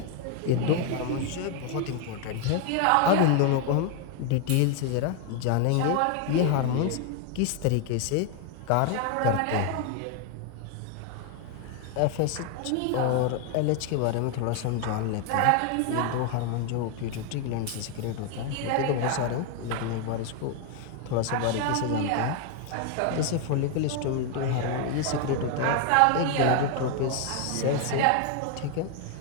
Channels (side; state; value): both; different; correlation 0.01